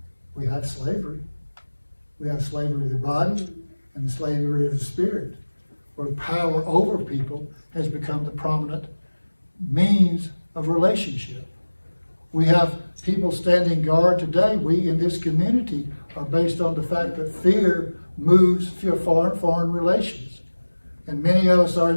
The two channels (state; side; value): inverted; both; correlation -1.00